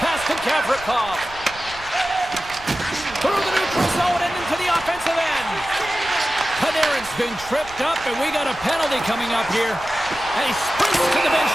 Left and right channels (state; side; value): noise; right; rumble, 19 dB below the sound